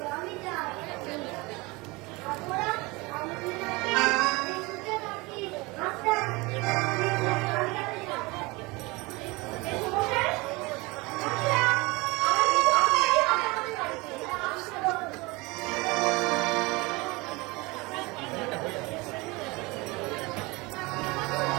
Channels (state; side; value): quieter; left; 24.3 dB